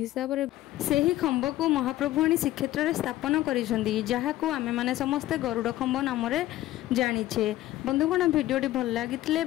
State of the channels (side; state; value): right; quieter; 15.3 dB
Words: रे सेही खंब को महाप्रभु आनी श्रीक्षेत्र रे स्थापन करिसंदी जहाको आमे माने समस्ते गरुड़ खंब नाम रे जानिछे। बंधुगण वीडियोटी भल लागिथिले